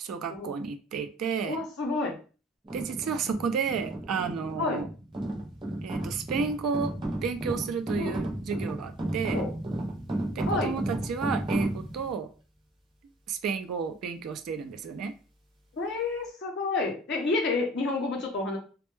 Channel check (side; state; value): both; normal; correlation 0.48